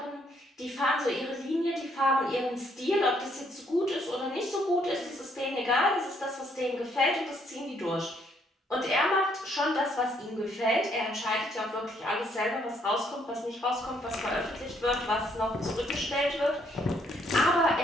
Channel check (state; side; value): normal; both; correlation 0.69